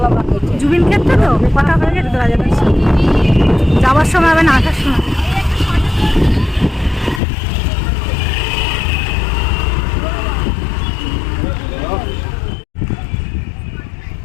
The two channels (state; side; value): drops out; right; at 7.2 s